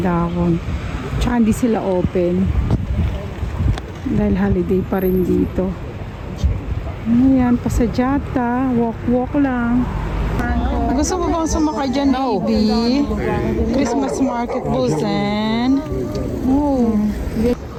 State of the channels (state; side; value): identical; both; correlation 1.00